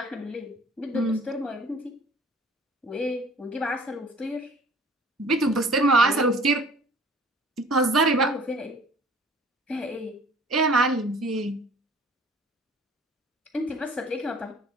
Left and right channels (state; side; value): normal; both; correlation 0.50